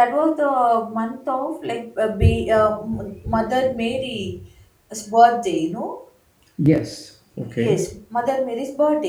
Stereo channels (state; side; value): identical; both; correlation 1.00